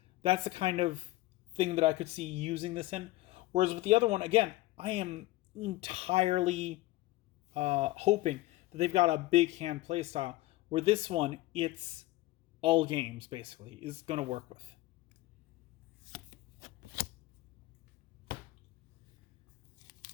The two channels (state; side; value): quieter; right; 18.5 dB